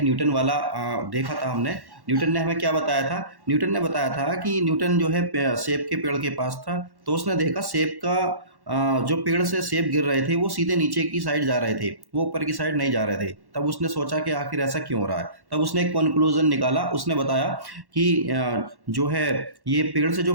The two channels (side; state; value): left; late; 1.1 ms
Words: न्यूटन वाला देखा था। न्यूटन ने हमें क्या बताया था? न्यूटन ने बताया था कि न्यूटन जो है सेब के पेड़ के पास था, तो उसने देखा सेब का जो पेड़ से सेब गिर रहे थे वो सीधे नीचे की साइड जा रहे थे, वो ऊपर की साइड नहीं जा रहे थे। तब उसने सोचा कि आखिर ऐसा क्यों हो रहा है। तब उसने एक कंक्लूजन निकाला। उसने बताया कि जो है ये पेड़ से जो